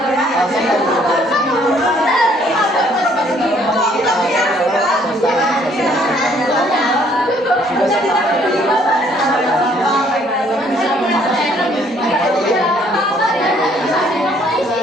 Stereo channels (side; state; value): both; normal; correlation 0.63